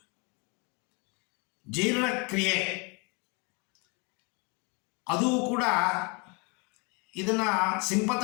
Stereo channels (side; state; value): right; quieter; 31.1 dB